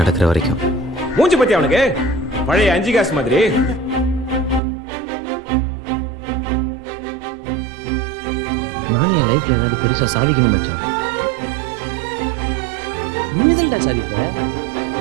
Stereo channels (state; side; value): drops out; left; at 4.6 s